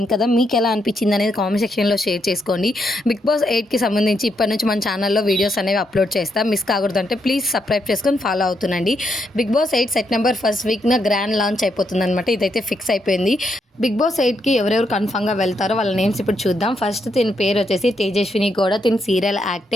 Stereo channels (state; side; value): normal; both; correlation 0.79